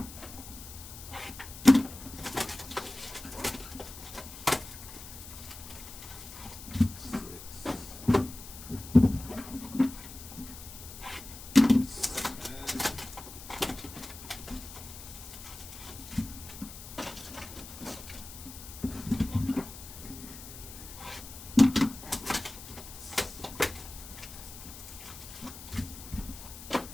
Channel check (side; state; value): left; noise; hiss, 13 dB below the sound